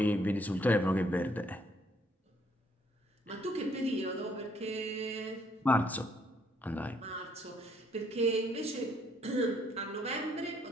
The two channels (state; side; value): normal; both; correlation 0.68